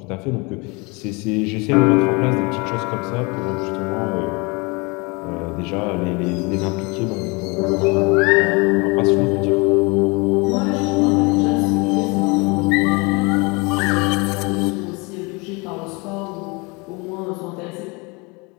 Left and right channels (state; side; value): quieter; right; 28.2 dB